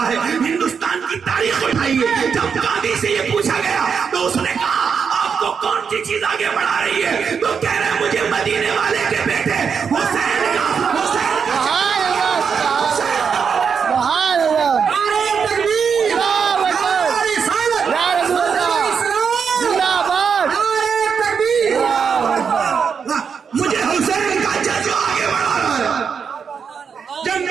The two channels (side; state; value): left; quieter; 6.4 dB